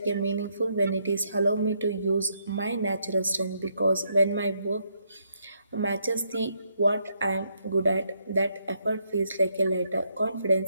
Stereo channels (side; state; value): both; inverted; correlation -0.75